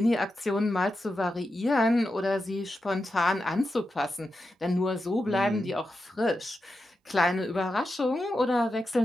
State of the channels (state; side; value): normal; both; correlation 0.89